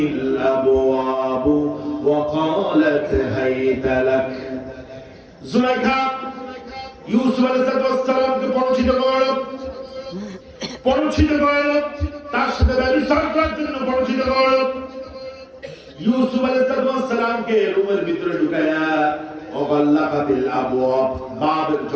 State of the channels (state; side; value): identical; both; correlation 1.00